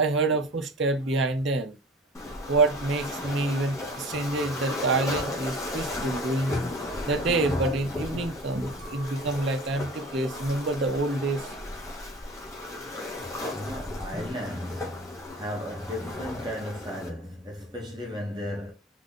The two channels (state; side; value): normal; both; correlation 0.39